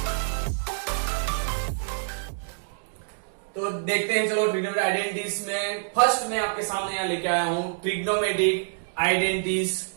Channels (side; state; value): left; silent; digital silence